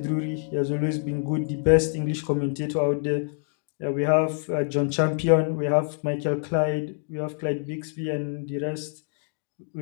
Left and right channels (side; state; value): right; silent; 61 dB below the other